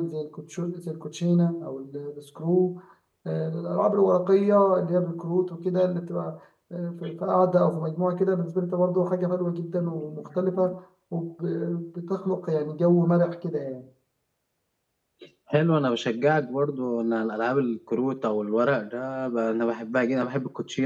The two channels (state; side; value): identical; both; correlation 1.00